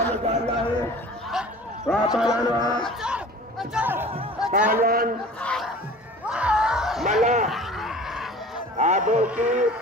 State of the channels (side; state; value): both; normal; correlation 0.43